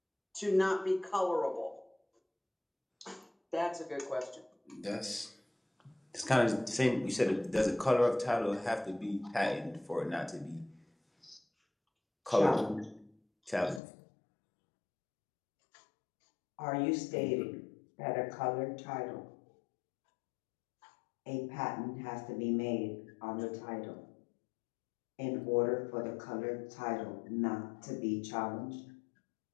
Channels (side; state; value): right; drops out; at 13.8 s